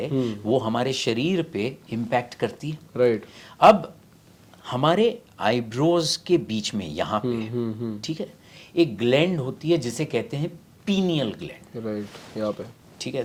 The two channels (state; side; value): identical; both; correlation 1.00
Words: वो हमारे शरीर पे इम्पैक्ट करती है। राइट अब हमारे आईब्रोज के बीच में यहाँ पे ठीक है एक ग्लैंड होती है जिसे कहते हैं पीनियल ग्लैंड, राइट यहाँ पे, ठीक है।